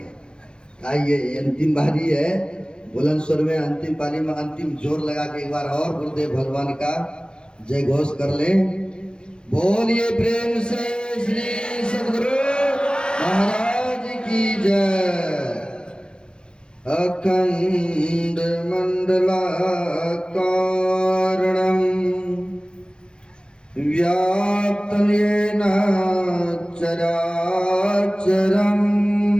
आइए अंतिम बारी है, बुलंद स्वर में अंतिम पाली में अंतिम जोर लगा के एक बार और गुरुदेव भगवान का जय घोष कर लें। बोलिए प्रेम से श्री सद्गुरु महाराज की जय। अखंड मंडलाकारं व्याप्तं येन चराचरं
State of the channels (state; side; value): late; right; 0.049 ms